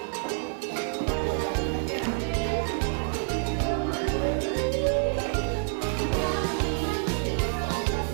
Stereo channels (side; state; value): left; silent; digital silence